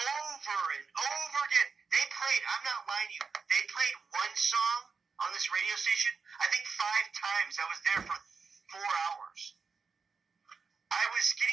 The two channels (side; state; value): left; quieter; 5.2 dB